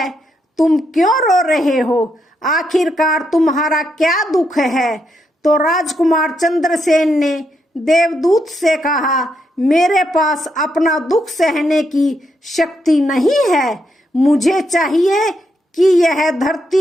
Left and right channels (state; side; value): normal; both; correlation 0.80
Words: तुम क्यों रो रहे हो? आखिरकार तुम्हारा क्या दुख है? तो राजकुमार चंद्रसेन ने देवदूत से कहा, मेरे पास अपना दुख सहने की शक्ति नहीं है। मुझे चाहिए कि यह